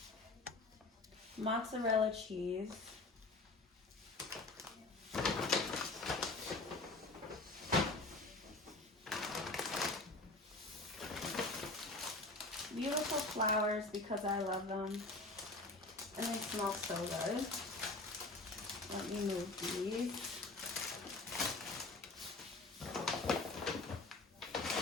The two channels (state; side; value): quieter; right; 3.1 dB